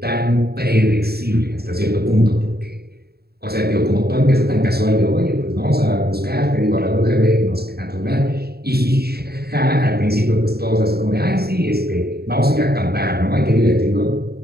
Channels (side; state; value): left; late; 0.46 ms